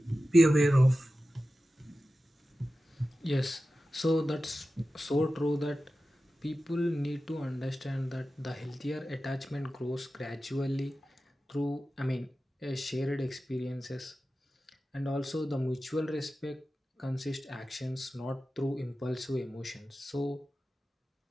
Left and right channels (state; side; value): normal; both; correlation 0.94